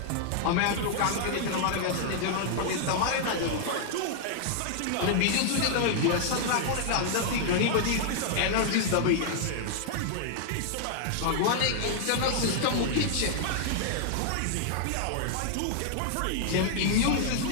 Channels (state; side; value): different; both; correlation -0.01